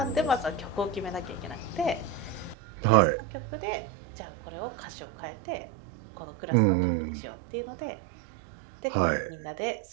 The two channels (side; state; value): left; drops out; at 2.6 s